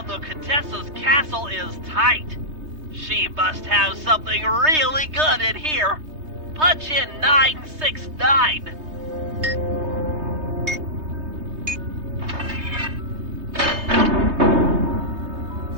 the Contessa's castle is tight. She must have something really good in here. Punch in 969.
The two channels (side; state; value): left; late; 3.2 ms